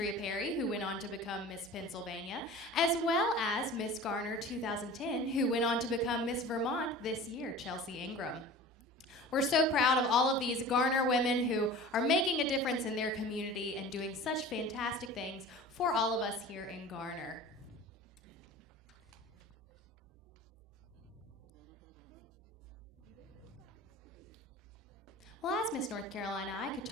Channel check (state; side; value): normal; both; correlation 0.39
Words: Perry, who went on to become Miss Pennsylvania, as well as Miss Garner 2010, who went on to become Miss Vermont this year, Chelsea Ingram. We're so proud of all of these Garner women who are making a difference in their community and doing such fantastic things for all of us here in Garner. Well, as Miss North Carolina, I could